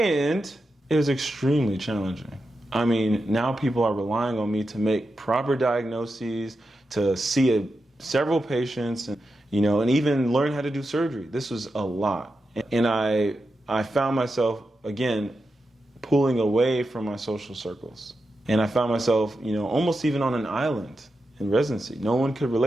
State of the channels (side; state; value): both; normal; correlation 0.89